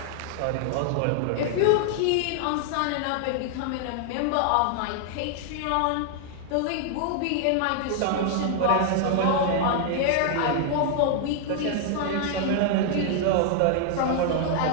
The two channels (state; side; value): different; both; correlation -0.01